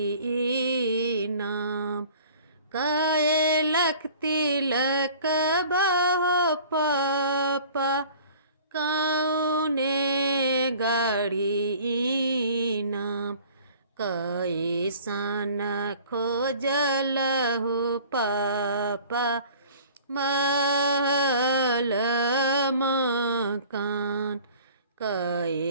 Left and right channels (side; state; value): both; inverted; correlation -0.48